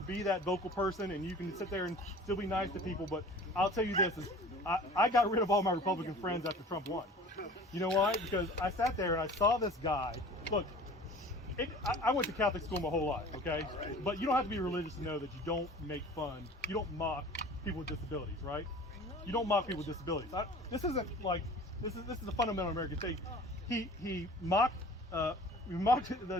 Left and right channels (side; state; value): both; normal; correlation 0.43